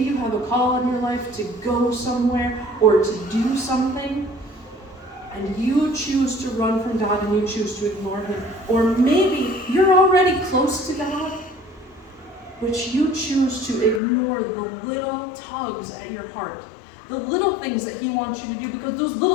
you have a call in your life to go somewhere or to do something, and you choose to run from God and you choose to ignore him. Or maybe you're already close to God, but you choose to ignore the little tugs at your heart, the little things that he wants you to do, because those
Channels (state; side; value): drops out; right; at 14.0 s